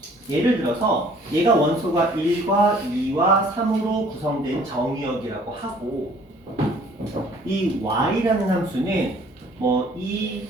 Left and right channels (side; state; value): both; normal; correlation 0.56